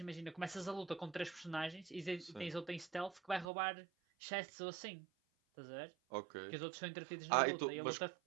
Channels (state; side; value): drops out; left; at 3.5 s